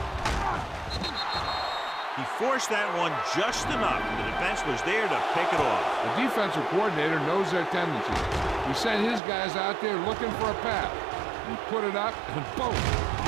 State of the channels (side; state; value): left; drops out; at 9.2 s